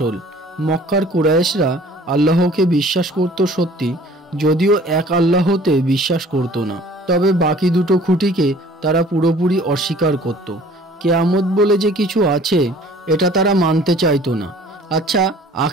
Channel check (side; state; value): both; normal; correlation 0.51